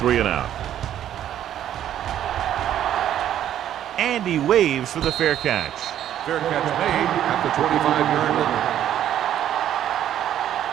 And he waves for the fair catch. Fair catch made at the 25-yard line.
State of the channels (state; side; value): quieter; left; 11.0 dB